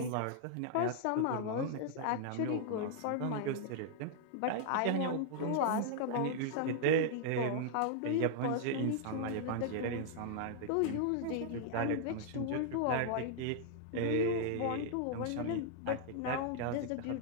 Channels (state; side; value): different; both; correlation -0.01